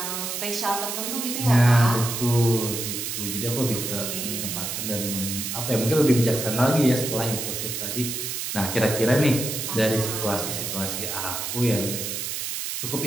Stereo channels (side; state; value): right; noise; hiss, 4 dB below the sound